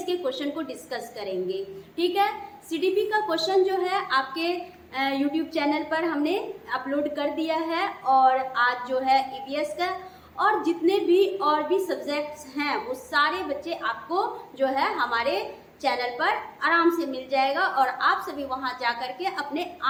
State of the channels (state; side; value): identical; both; correlation 1.00